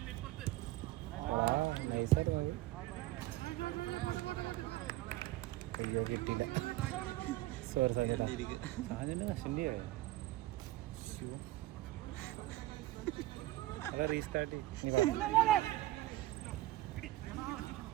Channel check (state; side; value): quieter; left; 16.8 dB